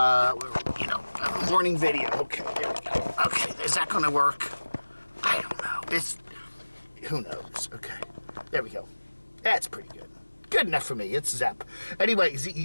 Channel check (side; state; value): both; inverted; correlation -1.00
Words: morning video. Okay, there we go. Okay, is that going to work? I don't know. Who knows? Okay, there we go. That's pretty good. Good enough for me. It's ZEP. Anyway,